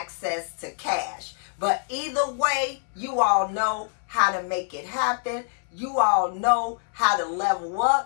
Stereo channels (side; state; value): right; silent; 61 dB below the other